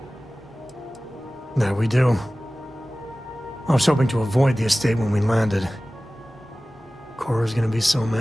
There we do. I was hoping to avoid the estate when we landed. Cora's gonna be so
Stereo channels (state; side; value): normal; both; correlation 0.97